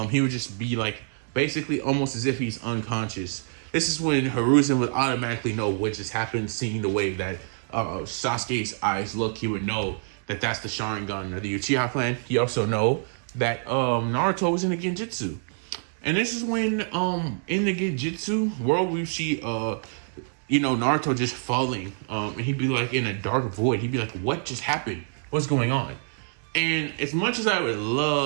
He would just be like basically almost as if he's unconscious. This is when Hiruzen would automatically know what just happened, seeing the way that Sasuke's eyes look. He would know that that's the Sharingan of the Uchiha clan. He also know that Naruto was in a Genjutsu. And this is when in the Genjutsu world we see Naruto just falling. And he'd be like in a dark void. He'd be like, what just happened? What's going on? And as much as I would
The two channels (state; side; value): silent; left; 61 dB below the other